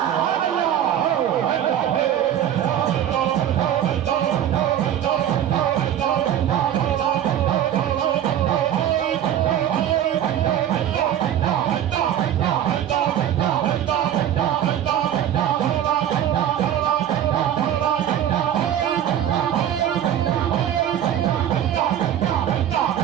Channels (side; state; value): left; quieter; 10.6 dB